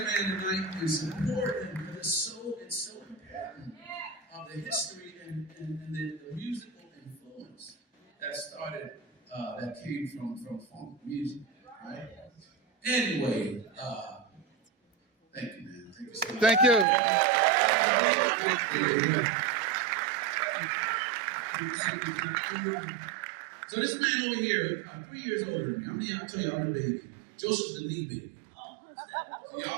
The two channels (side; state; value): left; drops out; at 16.9 s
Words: man tonight and support him, because it's so important of the history and the musical influence that started, that came from funk music, right? Anyway, thank you, man. Thank you so much. Thank you. So this man over here, 3 years older than me. How many of y'all tell you I'm the baby? Joseph's the knee baby. So